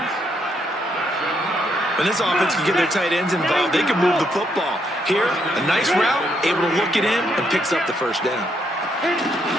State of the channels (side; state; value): both; normal; correlation 0.75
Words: When this offense can get their tight ends involved, they can move the football. Here, a nice route, able to look it in, and picks up the first down.